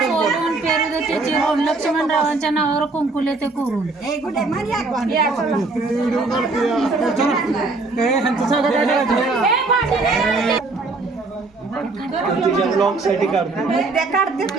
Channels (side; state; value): left; quieter; 3.6 dB